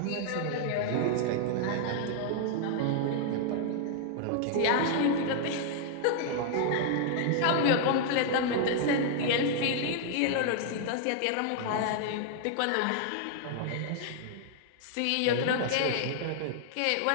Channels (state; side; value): different; both; correlation -0.01